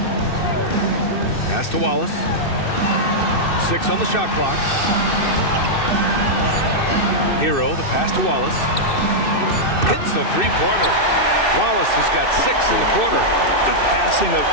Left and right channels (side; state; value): right; late; 2.6 ms